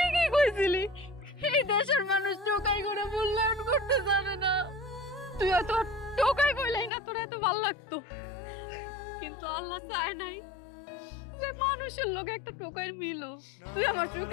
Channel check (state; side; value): drops out; right; at 6.9 s